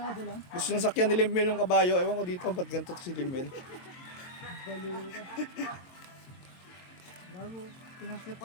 lang. Gusto niya sakyan ni Limel yung kabayo. Ewan ko dito, ba't ganito si Limel? Baliw ka. Bago,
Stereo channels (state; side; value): late; right; 22 ms